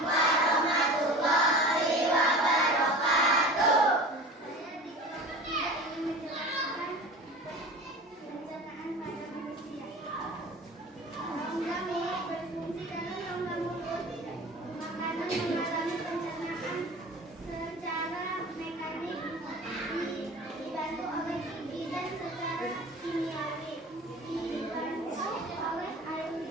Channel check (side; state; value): both; normal; correlation 0.37